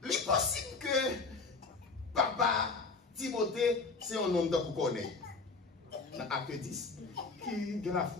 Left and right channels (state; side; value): quieter; right; 4.2 dB